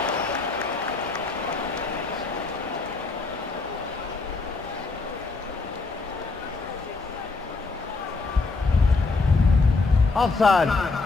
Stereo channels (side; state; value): right; quieter; 3.9 dB